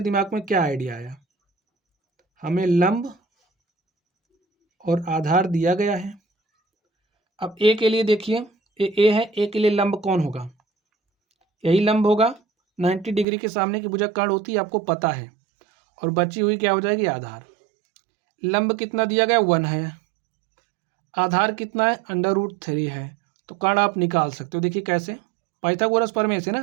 दिमाग में क्या आइडिया आया? हमें लंब और आधार दिया गया है। अब ए के लिए देखिए, ए है, ए के लिए लंब कौन होगा, यही लंब होगा। 90 डिग्री के सामने की भुजा कर्ण होती है, आपको पता है। और बची हुई क्या हो जाएगी, आधार। लंब कितना दिया गया, 1 है। आधार कितना है, √3 है। तो कर्ण आप निकाल सकते हो। देखिए कैसे, पाइथागोरस प्रमेय से ना,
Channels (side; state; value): left; drops out; at 13.2 s